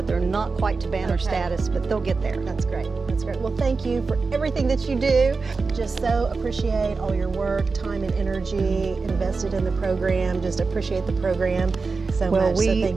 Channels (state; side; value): quieter; left; 4.3 dB